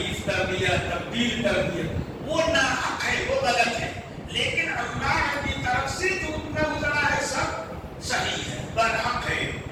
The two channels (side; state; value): both; identical; correlation 1.00